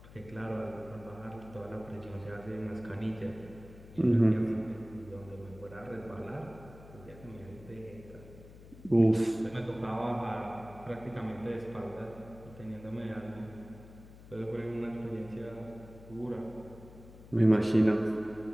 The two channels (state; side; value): noise; left; hum, 18 dB below the sound